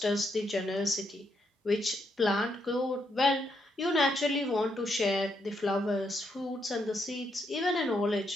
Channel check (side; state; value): both; normal; correlation 0.78